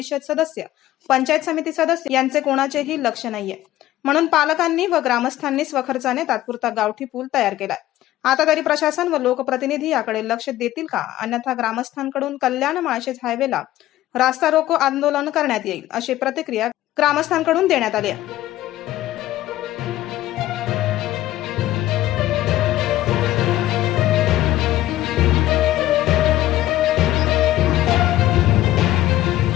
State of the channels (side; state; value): right; quieter; 14.8 dB